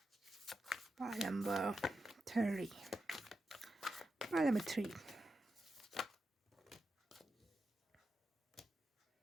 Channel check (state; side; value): normal; both; correlation 0.88